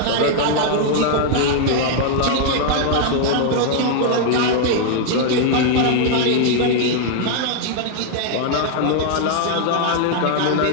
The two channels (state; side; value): different; both; correlation 0.00